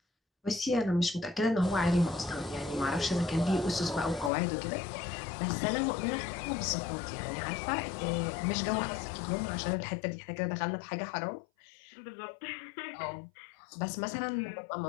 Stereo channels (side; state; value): right; drops out; at 4.3 s